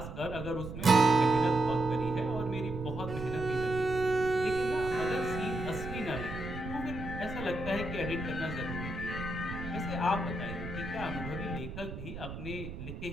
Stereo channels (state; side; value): noise; right; rumble, 9 dB below the sound